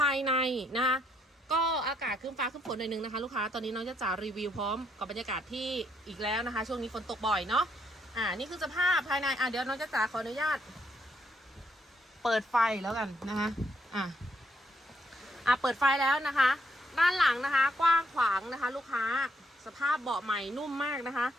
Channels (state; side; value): normal; both; correlation 0.74